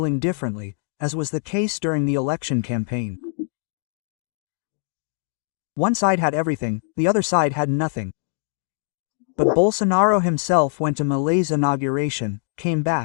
differently, as was the case during the election campaign. One side had everything, the other side had nothing. But Bolsonaro himself went to Malay's inauguration, came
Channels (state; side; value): silent; right; digital silence